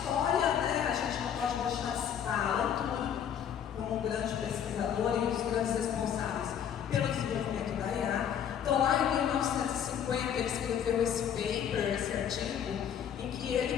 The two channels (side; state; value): right; quieter; 8.8 dB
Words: né? A gente não pode deixar de citar Alan Turing como um grande pesquisador e um dos grandes responsáveis pelo desenvolvimento da IA. Então, lá em 1950, ele escreveu esse paper, esse artigo, em que